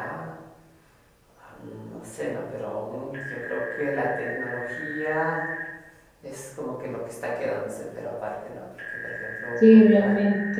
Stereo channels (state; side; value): identical; both; correlation 1.00